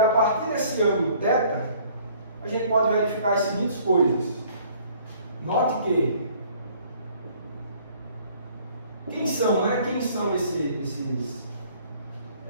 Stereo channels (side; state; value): both; inverted; correlation -0.57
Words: partir desse ângulo θ, a gente pode verificar as seguintes coisas. Note que quem são